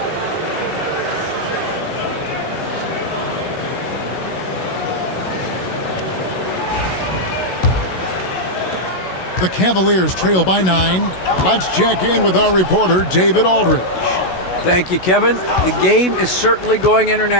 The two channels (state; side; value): late; right; 16 ms